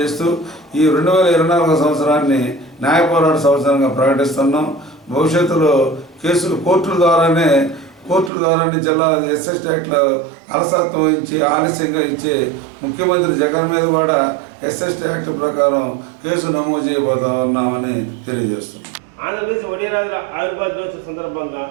ఈ 2024 సంవత్సరాన్ని న్యాయ పోరాట సంవత్సరంగా ప్రకటిస్తున్నాం. భవిష్యత్తులో కేసులు కోర్టుల ద్వారానే జిల్లా ఎస్ఎస్టీ యాక్ట్లో అలసత్వం ఇచ్చి ఆలస్యంగా ఇచ్చే ముఖ్యమంత్రి జగన్ మీద కూడా ఎస్ఎస్టీ యాక్ట్ ప్రకారం కేసు నమోదు చేయబోతా ఉన్నామని తెలియజేస్తున్నాం. ఆంధ్రప్రదేశ్ ఒడియారాజుల ఆవిర్భావ దినోత్సవం సందర్భంగా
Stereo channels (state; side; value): drops out; left; at 8.3 s